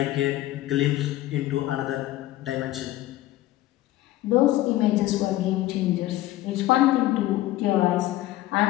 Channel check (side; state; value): right; quieter; 15.5 dB